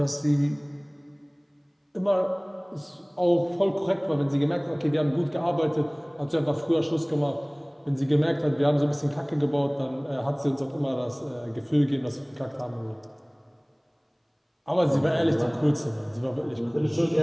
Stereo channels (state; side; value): identical; both; correlation 1.00